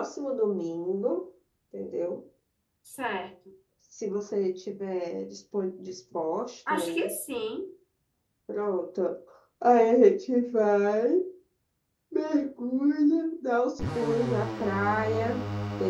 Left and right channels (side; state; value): both; identical; correlation 1.00